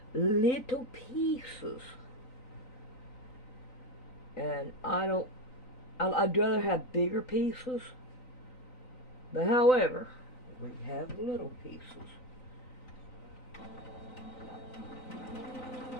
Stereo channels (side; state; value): right; late; 3.9 ms